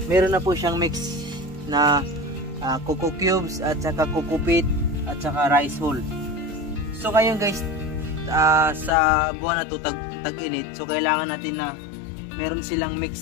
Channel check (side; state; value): right; drops out; at 8.9 s